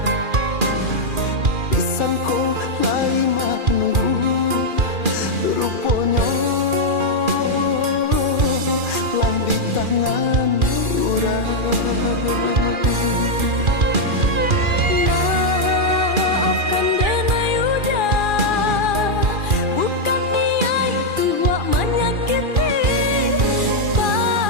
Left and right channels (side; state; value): left; late; 2.4 ms